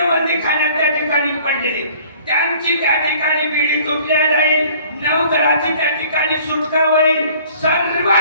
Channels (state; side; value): inverted; both; correlation -0.53